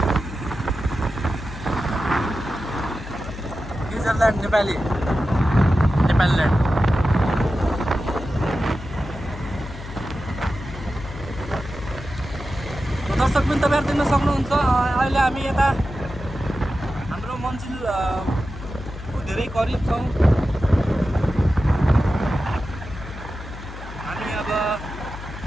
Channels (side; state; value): left; noise; hum, 12 dB below the sound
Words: New Zealand Nepali land. दर्शक पनि तपाईँहरू देख्न सक्नुहुन्छ। अहिले हामी यता हाम्रो मन्जिलको धेरै करिब छौँ। हामी अब